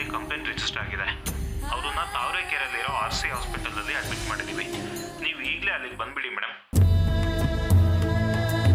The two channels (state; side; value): identical; both; correlation 1.00